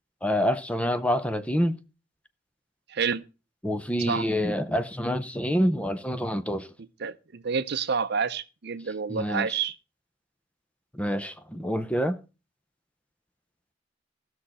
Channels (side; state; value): both; normal; correlation 0.57